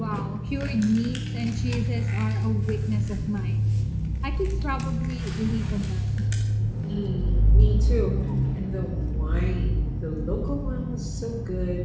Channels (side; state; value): both; identical; correlation 1.00